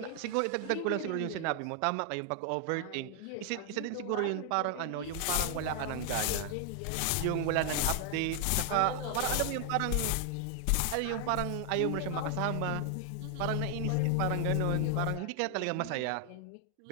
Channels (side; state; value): both; different; correlation 0.00